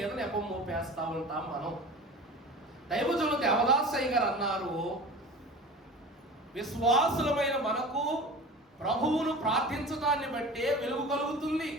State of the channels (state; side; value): normal; both; correlation 0.37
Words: నెపం మోపేస్తా ఉంటాం మనం. దైవజనులు దేవదాసయ్య గారు అన్నారు, విశ్వాసులమైన మనకు ప్రభువును ప్రార్థించడాన్ని బట్టే వెలుగు కలుగుతుంది.